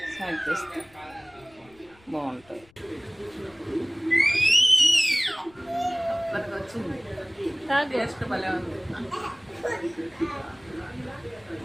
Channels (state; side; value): noise; left; rumble, 28 dB below the sound